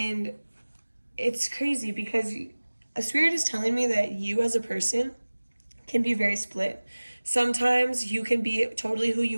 it's crazy because a Spirit is telling me that you as a person can be very split. Sometimes you can be totally who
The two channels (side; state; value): both; inverted; correlation -1.00